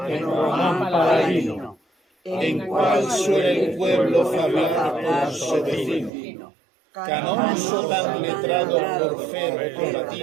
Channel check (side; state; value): left; drops out; at 6.1 s